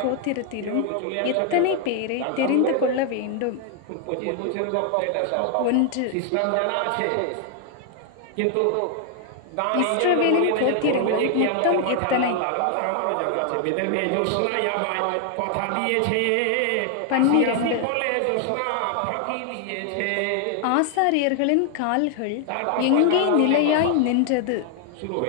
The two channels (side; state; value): both; different; correlation 0.00